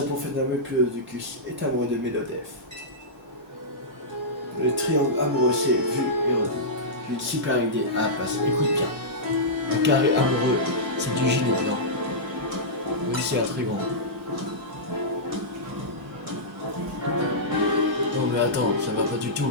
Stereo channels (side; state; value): both; normal; correlation -0.14